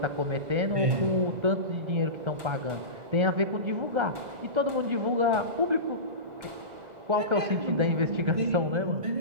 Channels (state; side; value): late; left; 2.0 ms